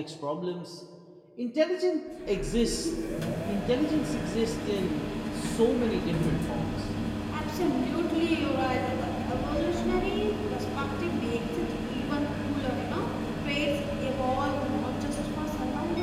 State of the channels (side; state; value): both; identical; correlation 1.00